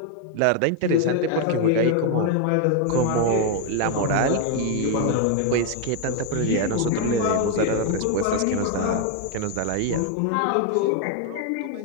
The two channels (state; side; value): different; both; correlation 0.01